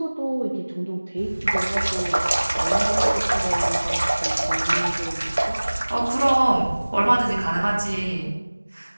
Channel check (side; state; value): both; inverted; correlation -1.00